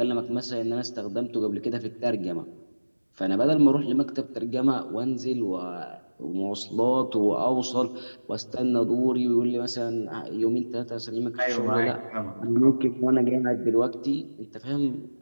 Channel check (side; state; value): both; inverted; correlation -1.00